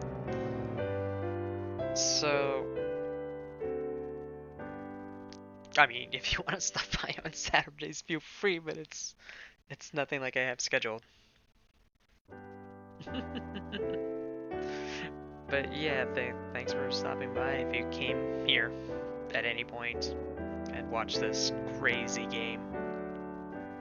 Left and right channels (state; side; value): identical; both; correlation 1.00